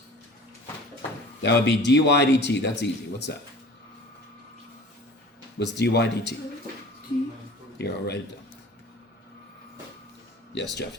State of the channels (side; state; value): both; normal; correlation 0.43